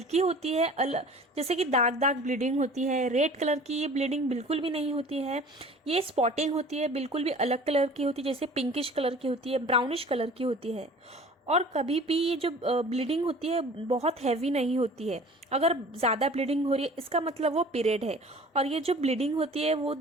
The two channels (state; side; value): normal; both; correlation 0.45